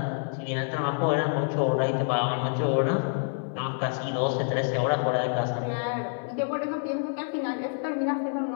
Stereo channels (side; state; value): right; silent; 60 dB below the other